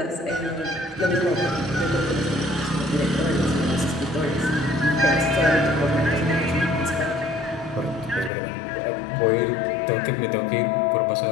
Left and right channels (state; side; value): drops out; right; at 8.3 s